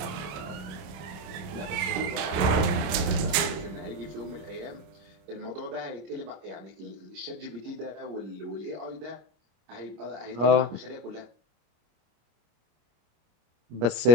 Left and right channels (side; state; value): left; late; 27 ms